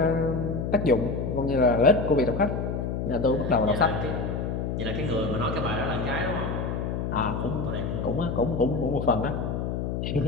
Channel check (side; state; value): left; noise; hum, 2 dB below the sound